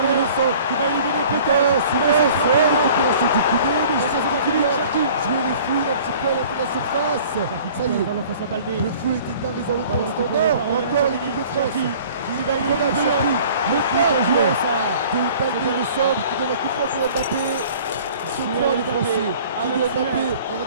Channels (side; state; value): both; inverted; correlation -0.49